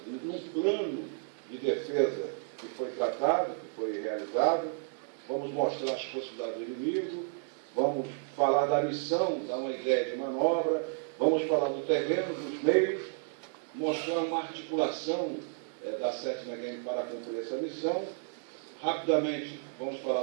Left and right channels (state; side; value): silent; left; 56 dB below the other